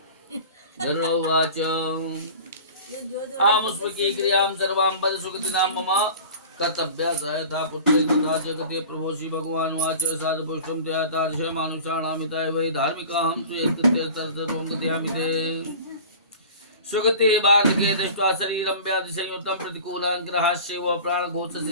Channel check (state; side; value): inverted; both; correlation -0.39